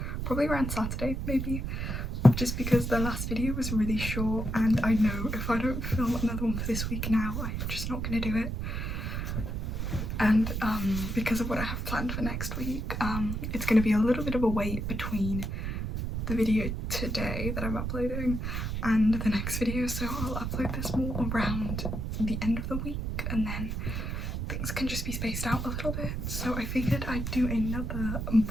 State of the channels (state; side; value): noise; right; rumble, 3 dB below the sound